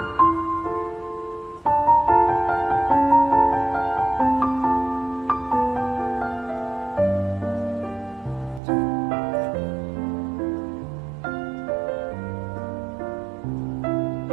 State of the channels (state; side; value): drops out; left; at 8.6 s